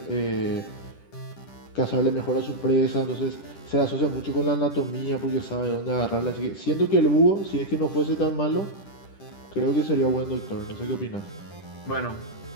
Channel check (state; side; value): late; right; 10 ms